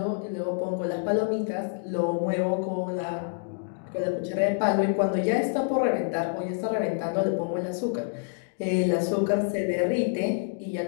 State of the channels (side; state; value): right; silent; digital silence